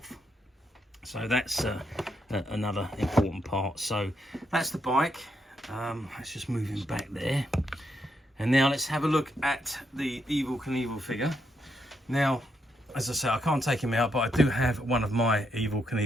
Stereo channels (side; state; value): both; normal; correlation 0.79